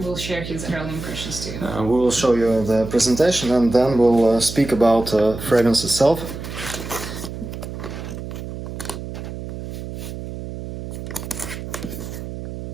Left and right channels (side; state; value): right; noise; hum, 9 dB below the sound